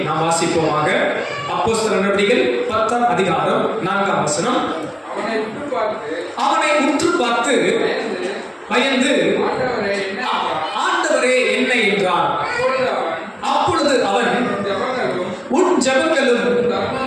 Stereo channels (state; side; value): identical; both; correlation 1.00